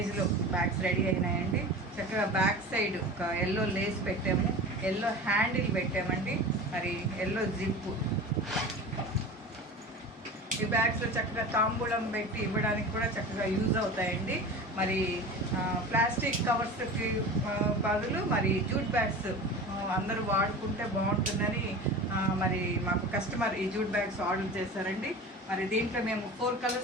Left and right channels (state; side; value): normal; both; correlation 0.34